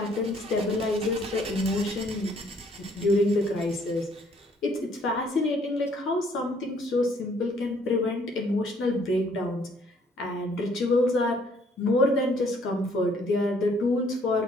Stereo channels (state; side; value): normal; both; correlation 0.63